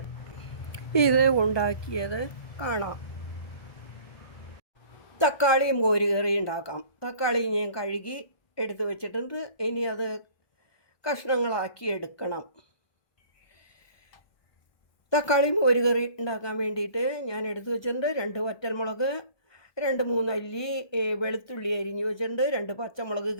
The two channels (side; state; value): right; late; 1.2 ms